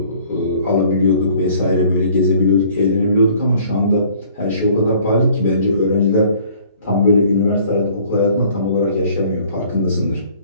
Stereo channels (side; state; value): both; inverted; correlation -0.56